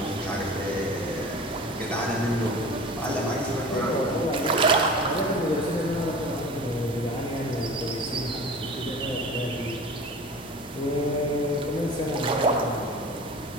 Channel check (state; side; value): normal; both; correlation 0.38